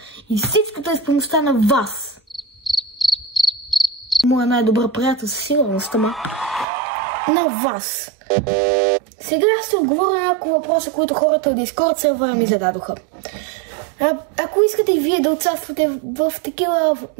и всичкото е с помощта на вас. Моя най-добър приятел със сигурност, ама на вас. Сега ще отговоря на няколко въпроса, които хората от Discord сервера ми зададоха. Ако искате и вие да участвате в такива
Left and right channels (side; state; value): left; drops out; at 6.7 s